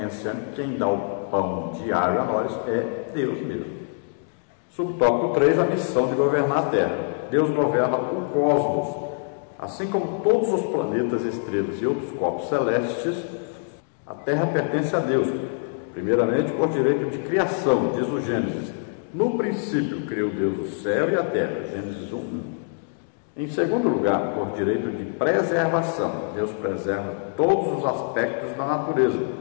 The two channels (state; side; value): silent; right; 62 dB below the other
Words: que quem dá o pão diário a nós é Deus mesmo. Subtópico 3, a missão de governar a Terra. Deus governa o cosmos, assim como todos os planetas, estrelas e outros corpos celestes. A Terra pertence a Deus, primeiramente por direito de criação, diz o Gênesis. No princípio criou Deus o céu e a terra, Gênesis 1:1. Em segundo lugar, por direito de preservação, Deus preserva todos os aspectos da natureza.